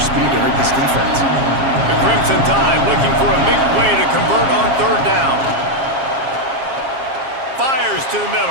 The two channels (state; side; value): late; left; 7.4 ms